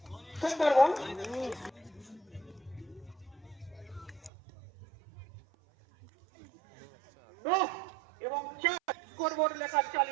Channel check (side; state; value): left; drops out; at 4.3 s